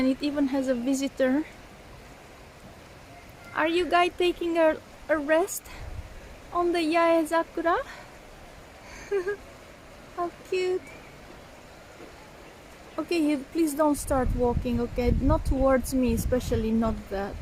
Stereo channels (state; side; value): identical; both; correlation 1.00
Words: it even has a visitor. Are you guys taking a rest on the Yae Sakura? How cute. Okay, please don't start walking, okay? Not towards me, especially not that.